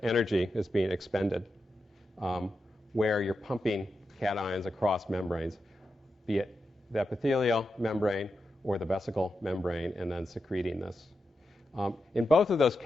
energy is being expended, where you're pumping cations across membranes, be it the epithelial membrane or the vesicle membrane and then secreting this. In both of those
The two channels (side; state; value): both; normal; correlation 0.88